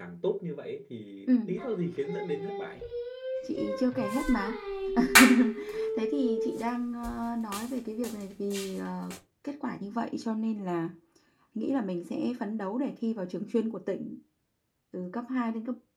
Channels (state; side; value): identical; both; correlation 1.00